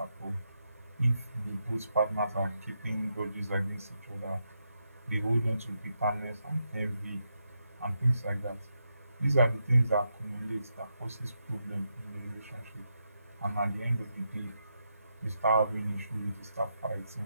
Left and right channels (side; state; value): both; inverted; correlation -0.83